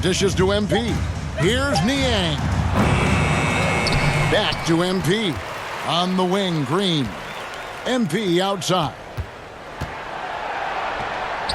dishes to MP. Here's Niang. Back to MP. On the wing, Green. MP outside.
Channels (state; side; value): identical; both; correlation 1.00